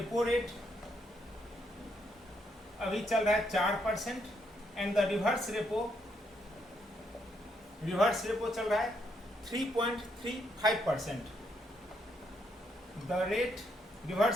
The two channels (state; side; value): normal; both; correlation 0.76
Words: रेट अभी चल रहा है 4% एंड द रिवर्स रेपो चल रहा है 3.35%। द रेट